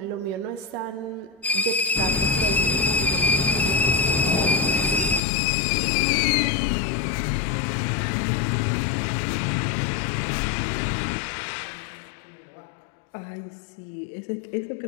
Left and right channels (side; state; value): right; drops out; at 5.2 s